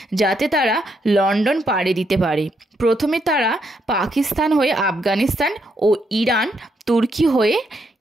যাতে তারা লন্ডন পাড়ি দিতে পারে। প্রথমে তারা পাকিস্তান হয়ে আফগানিস্তান ও ইরান, তুর্কি হয়ে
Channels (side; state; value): both; normal; correlation 0.77